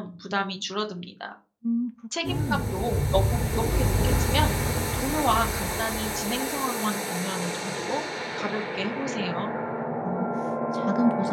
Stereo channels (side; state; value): both; identical; correlation 1.00